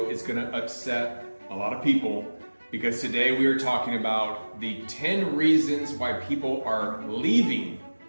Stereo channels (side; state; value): both; inverted; correlation -1.00